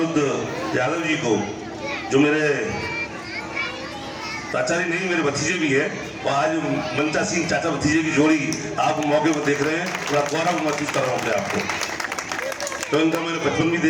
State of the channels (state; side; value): identical; both; correlation 1.00